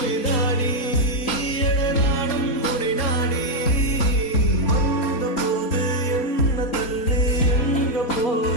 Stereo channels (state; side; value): late; right; 4.3 ms